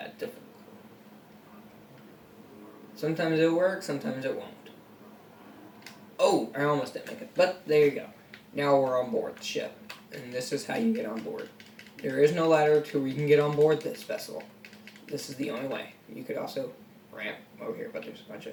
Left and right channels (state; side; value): identical; both; correlation 1.00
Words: difficulty. Sometimes it'll work, sometimes it won't. Oh, I almost didn't make it. But there you go. Now we're on board the ship. And this is how you get on board. There is no ladder to where you can get on board this vessel. This is the only way. You could also ramp over here, but there's a bunch of